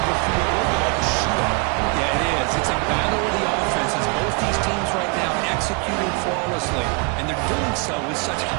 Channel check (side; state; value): left; quieter; 32.2 dB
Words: to feel a little bit like a shootout. Yeah, it is. It's a battle of the offenses. Both these teams right now executing flawlessly, and they're doing so with such